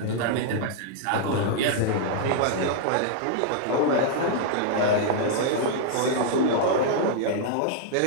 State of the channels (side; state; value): both; different; correlation -0.01